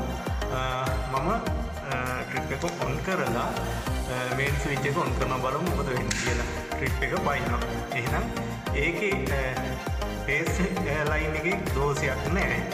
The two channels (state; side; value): identical; both; correlation 1.00